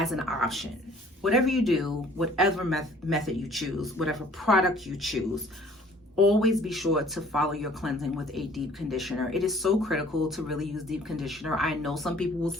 an option. Whatever you do, whatever method you choose, whatever product you choose, always be sure to follow your cleansing with a deep conditioner. It is so critical to really use deep conditioner. I know some people will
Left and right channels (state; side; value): normal; both; correlation 0.55